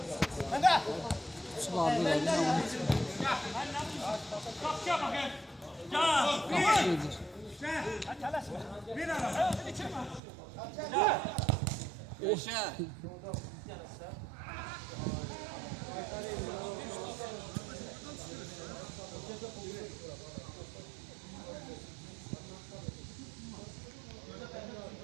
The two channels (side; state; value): left; drops out; at 10.2 s